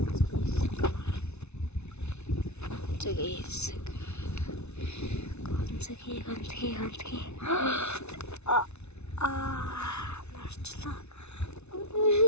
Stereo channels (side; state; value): right; late; 0.81 ms